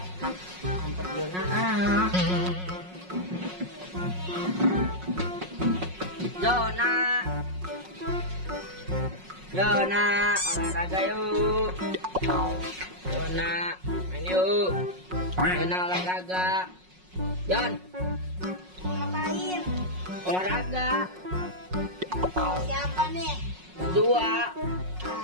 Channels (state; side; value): late; left; 5.5 ms